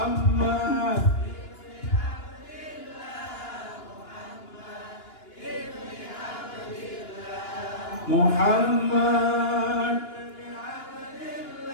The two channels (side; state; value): right; late; 2.9 ms